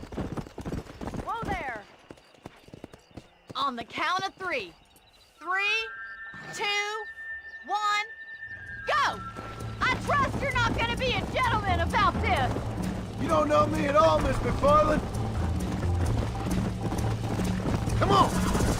Whoa there. On the count of 3. 3, 2, 1, go! I trust you're not gonna be a gentleman about this. You don't know me at all, Miss McFarland. Come on!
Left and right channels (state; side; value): identical; both; correlation 1.00